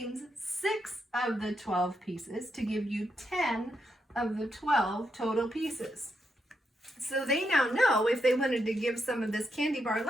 6 of the 12 pieces to give you 10 of the 12 total pieces. So they now know if they wanted to give some of this candy bar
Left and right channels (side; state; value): both; normal; correlation 0.82